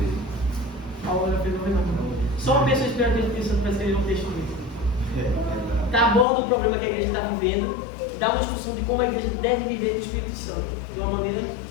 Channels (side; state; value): right; drops out; at 6.2 s